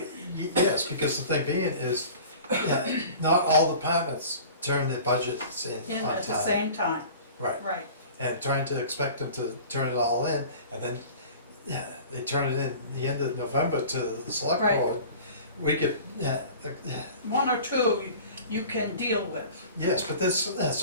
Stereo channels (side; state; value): both; inverted; correlation -0.42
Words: yes, because the thing being is, not all departments turn their budgets in In on at the time. same time, Right, right. and trying to expect them to turn it all in, and then, yeah, they turn it in the end of November to the select Right. board. We could, One or two you can deal with. yes, but there's,